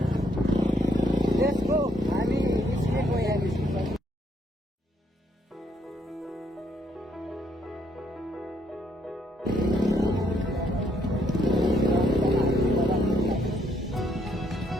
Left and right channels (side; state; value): both; normal; correlation 0.72